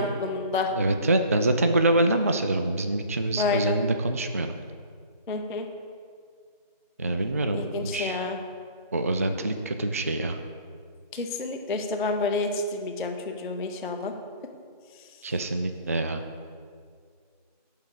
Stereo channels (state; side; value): inverted; both; correlation -0.50